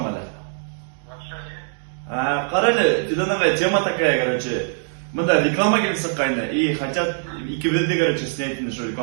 мали. Qarali, Fidan Ali, тема такая, короче. Мында реклама келсе кайны, и хотят икебезде, короче, снять нашу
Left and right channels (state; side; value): silent; left; digital silence